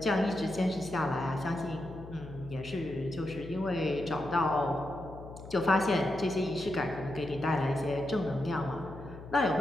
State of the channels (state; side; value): noise; left; hum, 14 dB below the sound